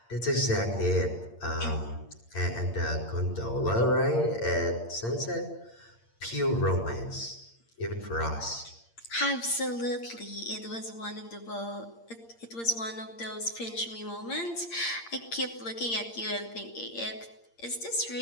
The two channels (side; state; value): right; late; 8.7 ms